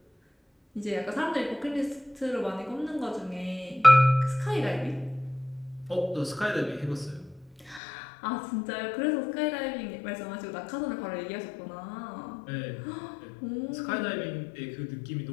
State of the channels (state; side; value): drops out; right; at 7.8 s